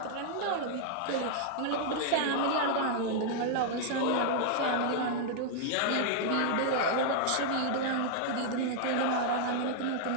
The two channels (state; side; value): different; both; correlation -0.01